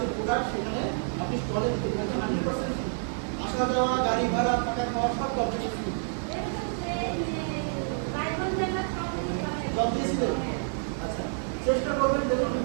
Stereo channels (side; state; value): left; silent; digital silence